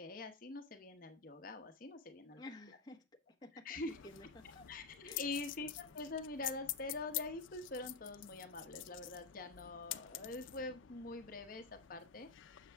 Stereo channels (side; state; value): right; quieter; 4.3 dB